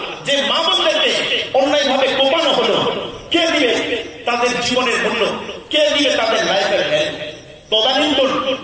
যে মা বোনদেরকে অন্যায় ভাবে কোপানো হলো, কে দিবে তাদের জীবনের মূল্য? কে দিবে তাদের লাইফের হেল্প? তদানীন্তন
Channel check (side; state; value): both; identical; correlation 1.00